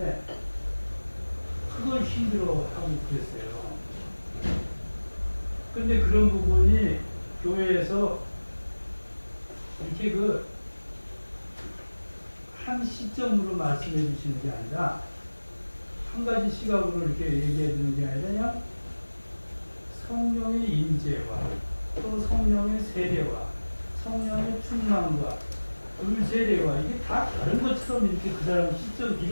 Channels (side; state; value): both; inverted; correlation -1.00